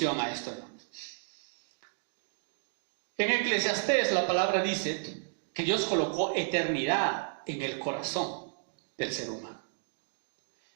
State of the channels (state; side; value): silent; left; digital silence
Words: a esto, hermanos. En Eclesiastés la palabra dice que Dios colocó eternidad en el corazón del ser humano.